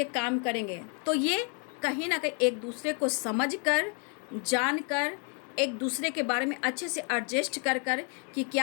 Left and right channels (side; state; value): right; quieter; 38.1 dB